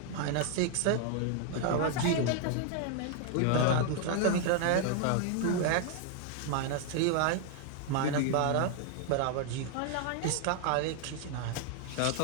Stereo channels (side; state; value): both; different; correlation 0.00